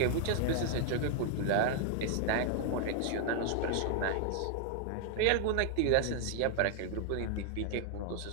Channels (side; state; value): both; different; correlation 0.00